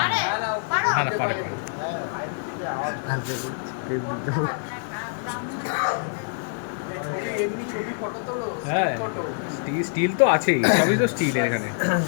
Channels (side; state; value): right; silent; digital silence